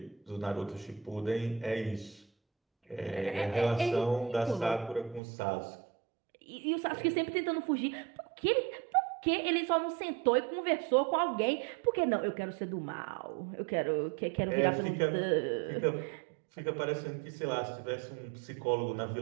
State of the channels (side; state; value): left; drops out; at 5.2 s